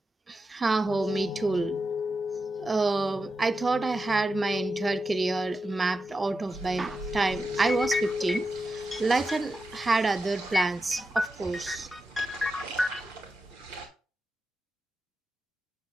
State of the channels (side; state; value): both; normal; correlation 0.90